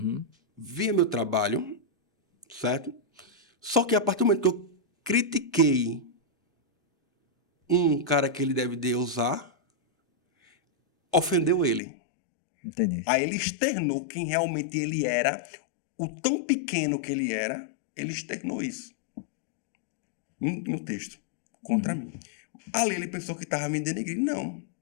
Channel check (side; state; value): right; drops out; at 11.8 s